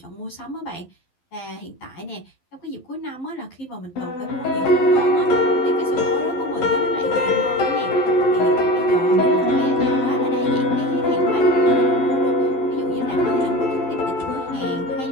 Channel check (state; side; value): late; right; 11 ms